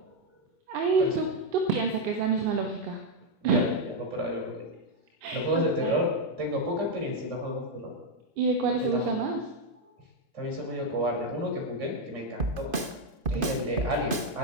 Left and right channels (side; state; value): left; late; 2.5 ms